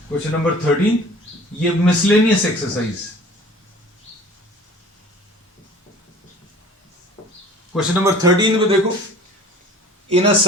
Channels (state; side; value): normal; both; correlation 0.46